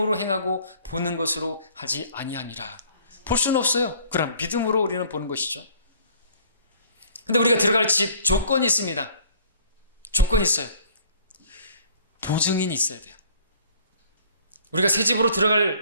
행하고 보는 것으로 하지 아니하니라. 볼 수는 없어요. 그럼 믿음으로 우리는 보는 것이죠. 근데 우리가 들어갈 집 조건이 있습니다. 조건이 있어요. 보증인이 있어야 돼요. 우리가 새 집으로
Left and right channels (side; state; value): both; inverted; correlation -0.55